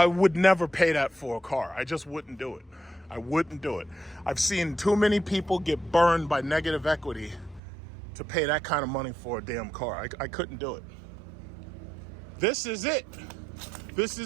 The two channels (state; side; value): drops out; left; at 7.6 s